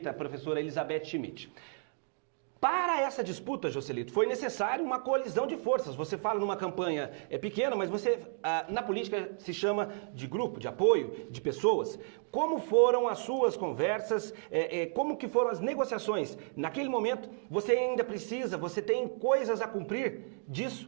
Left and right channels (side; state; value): left; silent; 56 dB below the other